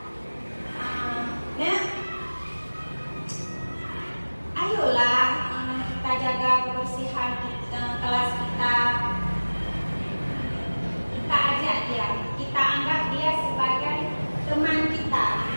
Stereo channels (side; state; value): both; inverted; correlation -1.00